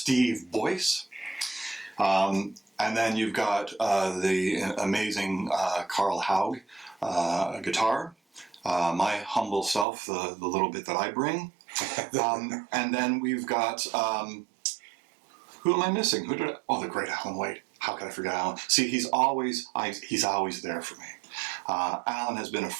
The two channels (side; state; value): left; drops out; at 9.9 s